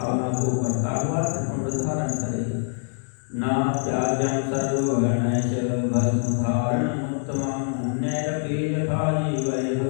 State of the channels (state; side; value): silent; right; digital silence